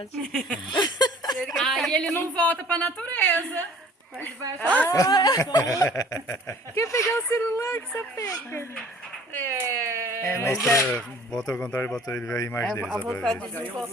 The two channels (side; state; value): both; normal; correlation 0.51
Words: aí ele não volta pra natureza. Ele vai achar Quer pegar o celular que você pega? Bota ao contrário e bota ele ver a imagem dele. A só pra vontade ver. de